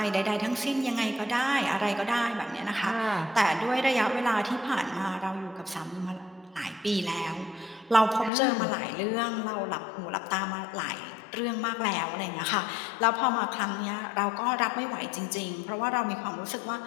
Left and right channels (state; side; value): drops out; right; at 8.3 s